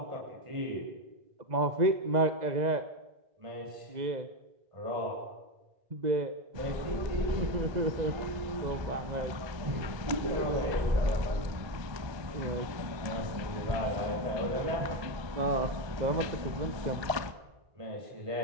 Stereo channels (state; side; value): late; left; 1.2 ms